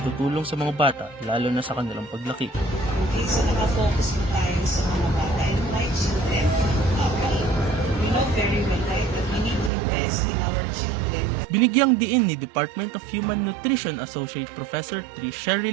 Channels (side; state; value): left; drops out; at 9.7 s